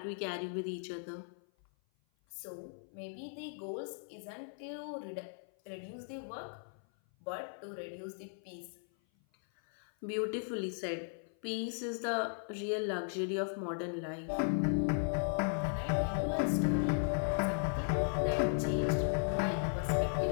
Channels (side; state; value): right; silent; 53 dB below the other